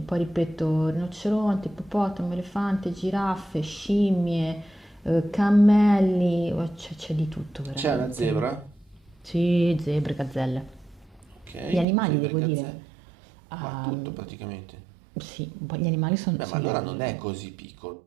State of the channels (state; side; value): drops out; left; at 11.9 s